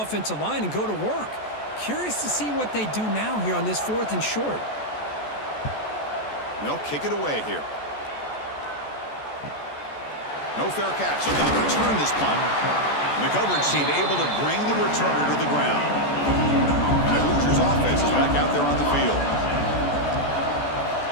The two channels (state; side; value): late; right; 14 ms